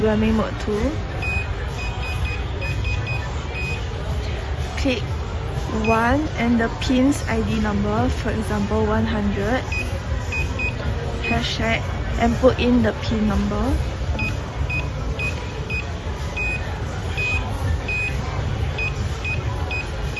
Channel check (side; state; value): both; identical; correlation 1.00